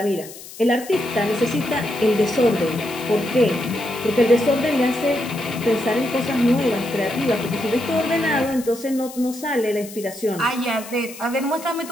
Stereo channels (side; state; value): left; noise; hiss, 15 dB below the sound